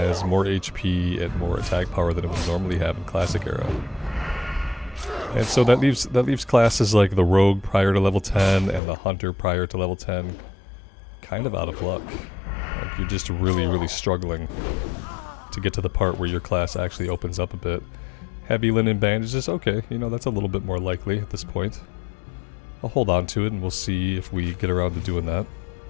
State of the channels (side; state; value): right; drops out; at 8.8 s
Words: more HP and more attack power than it would normally have in Classic era. And so that leaves classes like the Rogue prior to level 10 and the Hunter prior to level 10 kind of out of luck. Like you're just really, really struggling to get to the part where your class actually opens up a bit. Heavy linen bandages, okay, you know, that's a little bit more likely at this point. I'll hold on to it and we'll see if we get around to doing that.